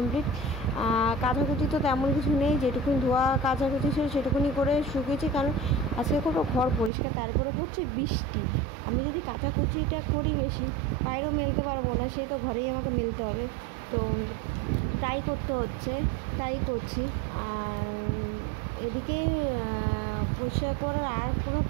কাচাকুচি তো তেমন কিছু নেই, যেটুকুনি ধোয়া কাচাকুচি ছিল সেটুকুনি করে শুকিয়েছি, কারণ আজকে খুব ঘর পরিষ্কার, তারপরে পড়ছে বৃষ্টি। আমি যদি কাচাকুচিটা করি বেশি, বাইরেও মেলতে পারবো না, সেই তো ঘরেই আমাকে মেলতে হবে। তো তাই করতে হচ্ছে, তাই করছি। আর এদিকে পরিষ্কার করার আর কোনো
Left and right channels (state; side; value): drops out; left; at 6.9 s